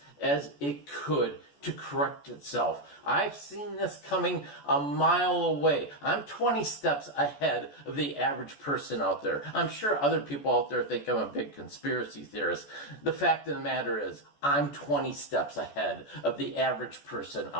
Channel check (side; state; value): right; late; 14 ms